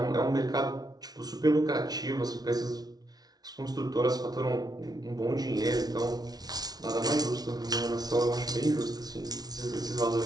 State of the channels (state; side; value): late; left; 0.19 ms